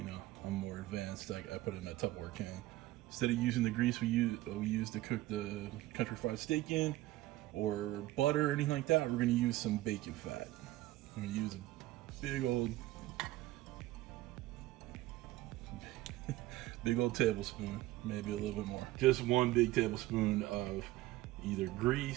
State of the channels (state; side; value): quieter; left; 16.7 dB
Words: more advanced. I put it in a Tupperware can. Instead of using the grease we use to cook the country fried steak in, or butter or anything like that, we're gonna use some bacon fat. I'm gonna use a big old tablespoon, maybe a little bit more. Just 1 big tablespoon of either